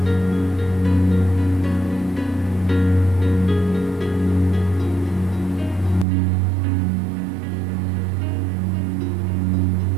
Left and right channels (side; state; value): left; drops out; at 6.1 s